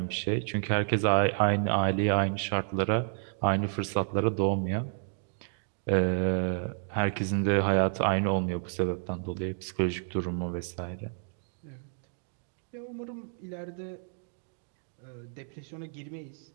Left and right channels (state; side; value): silent; left; digital silence